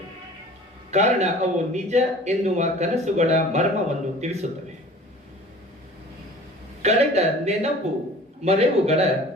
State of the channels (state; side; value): normal; both; correlation 0.45